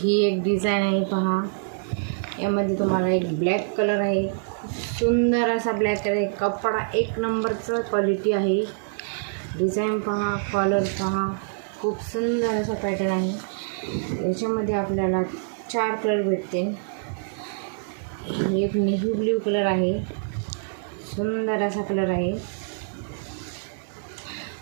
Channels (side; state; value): left; silent; 61 dB below the other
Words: एक डिझाइन आहे, पहा। यामध्ये तुम्हाला एक ब्लॅक कलर आहे, सुंदर असा ब्लॅक कलर आहे। कपडा एक नंबरचं क्वालिटी आहे। डिझाइन पहा, कॉलर पहा, खूप सुंदर असा पॅटर्न आहे। याच्यामध्ये आपल्याला 4 कलर भेटते। एक नेव्ही ब्ल्यू कलर आहे, सुंदर असा कलर आहे।